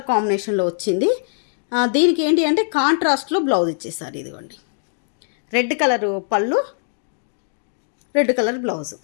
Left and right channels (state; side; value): silent; right; digital silence